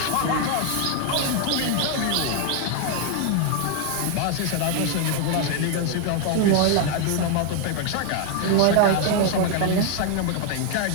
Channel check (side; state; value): both; different; correlation 0.00